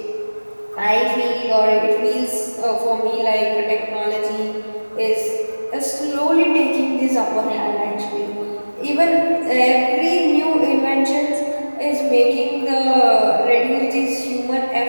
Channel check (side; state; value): both; inverted; correlation -1.00